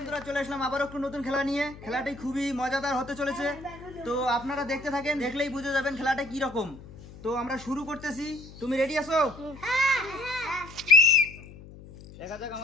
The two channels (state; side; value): noise; left; hum, 17 dB below the sound